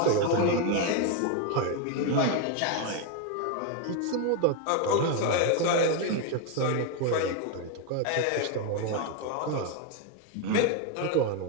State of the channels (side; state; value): both; different; correlation 0.01